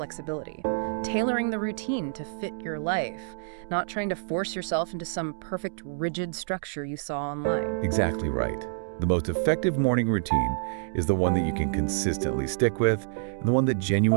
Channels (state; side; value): silent; left; digital silence